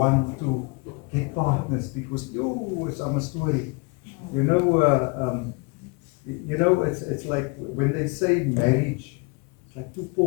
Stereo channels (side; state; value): right; quieter; 30.7 dB